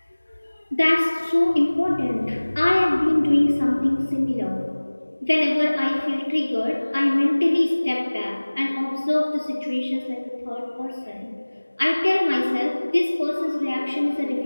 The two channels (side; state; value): both; inverted; correlation -1.00